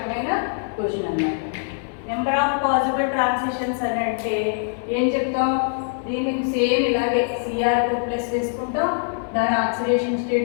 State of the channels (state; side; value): silent; right; 63 dB below the other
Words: క్వశ్చన్ అన్నమాట. నెంబర్ ఆఫ్ పాసిబుల్ ట్రాన్సిషన్స్ అని అంటే ఏం చెప్తాం, దీనికి సేమ్ ఇలాగే Cr2+ వేసుకుంటాం, దాని ఆక్సిడేషన్